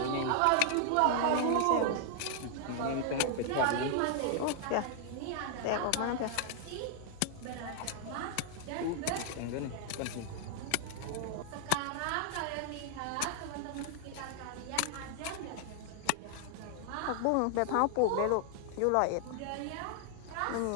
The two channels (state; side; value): different; both; correlation 0.00